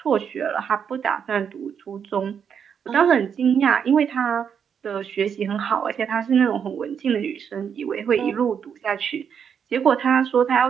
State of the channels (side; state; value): left; quieter; 7.5 dB